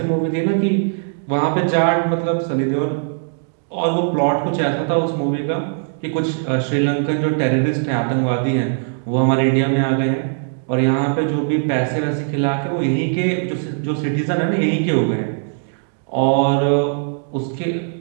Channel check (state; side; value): silent; left; digital silence